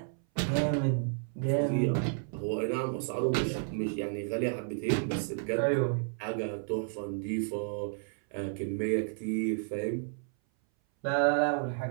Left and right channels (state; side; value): silent; left; 57 dB below the other